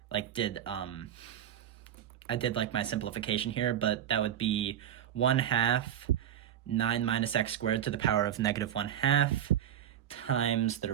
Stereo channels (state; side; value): quieter; left; 10.3 dB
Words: did my simplification here, but that would be 1/2 9 minus x squared to the power of negative 1/2 times the